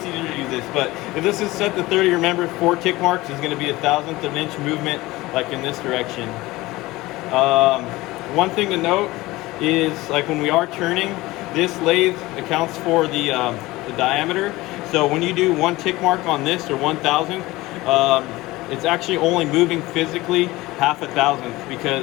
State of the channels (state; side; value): quieter; right; 19.5 dB